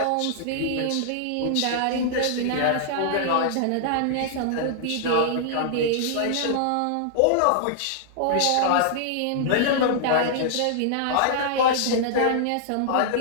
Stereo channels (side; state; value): both; different; correlation -0.01